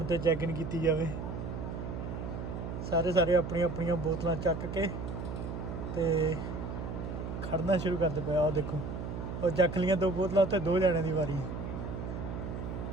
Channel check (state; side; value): noise; right; hum, 6 dB below the sound